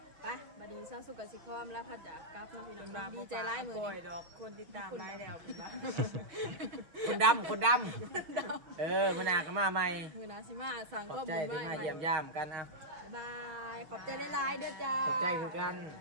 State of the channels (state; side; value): late; left; 6.3 ms